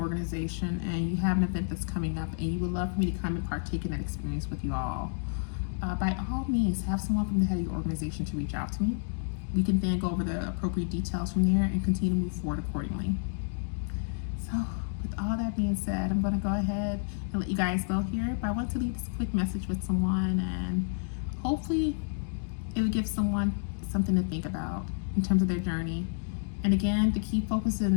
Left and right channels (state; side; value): silent; right; digital silence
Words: and you have an event that's coming up and you would love for me to come and partake in that experience with you all. By all means, have someone from the head of your organization to reach out to me. We can then go over the appropriate details from there and continue to move forward accordingly. So with all that being said, I'm going to go ahead and let you guys go here. But I want to leave this quick message with someone, and hopefully it will give someone something to think about in terms of their journey. And again, the key focus